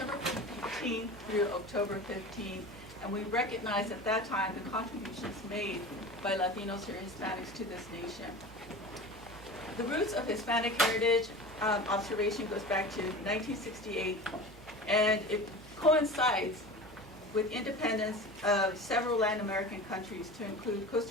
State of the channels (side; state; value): both; normal; correlation 0.33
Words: 15th through October 15th. And we recognize at that time the contributions made by Latinos or Hispanics to this nation. The roots of Hispanic heritage observation goes back to 1968, and it coincides with independence of several Latin American countries, to include